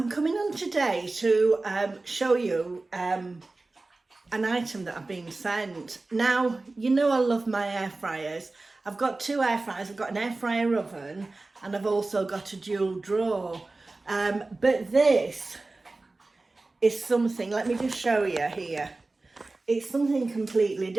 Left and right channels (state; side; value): quieter; left; 3.3 dB